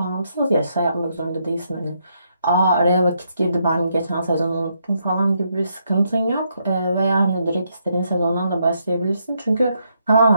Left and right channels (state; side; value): inverted; both; correlation -0.77